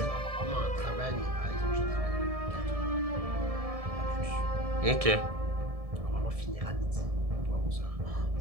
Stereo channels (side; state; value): left; late; 1.7 ms